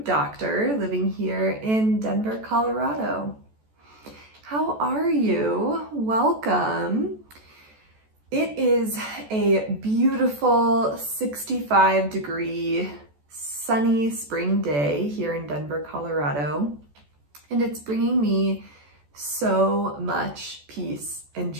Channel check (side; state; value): left; late; 14 ms